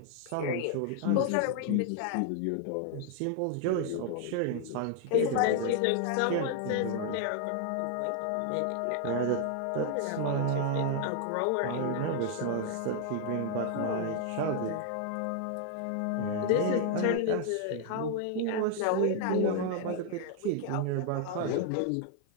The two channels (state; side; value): different; both; correlation 0.00